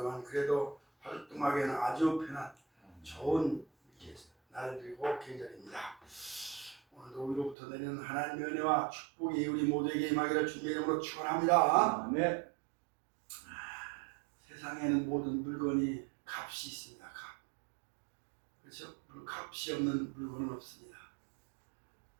그래도 활동하기에는 아주 편한 좋은 이렇게 날이고 계절입니다. 오늘도 우리로부터 내는 하나님의 은혜와 축복이 우리 모두에게 임하기를 주님의 이름으로 축원합니다. 네. 세상에는 모든 물건이 값이 있습니다. 값. 그렇죠? 값이 없는 물건은 없습니다.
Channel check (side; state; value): left; drops out; at 7.6 s